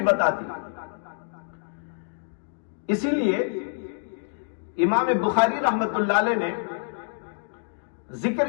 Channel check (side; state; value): right; silent; digital silence